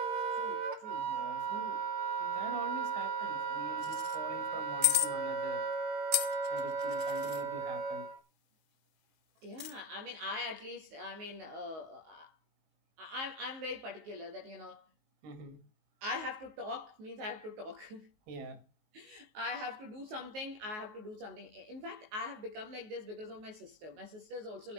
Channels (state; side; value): late; left; 18 ms